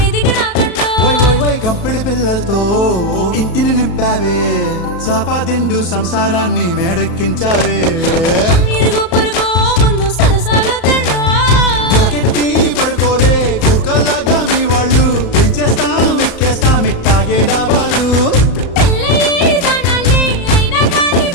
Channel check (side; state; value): right; late; 34 ms